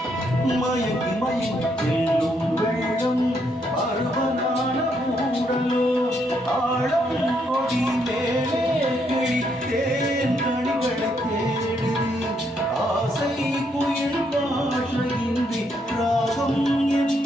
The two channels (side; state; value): both; normal; correlation 0.75